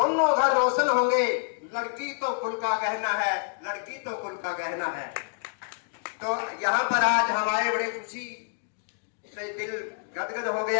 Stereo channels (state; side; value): silent; right; digital silence